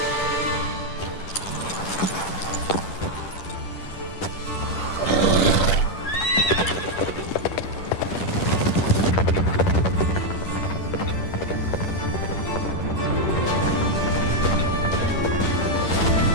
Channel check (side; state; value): right; late; 10 ms